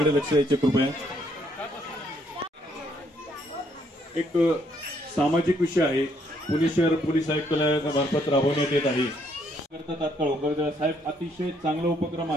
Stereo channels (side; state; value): both; normal; correlation 0.70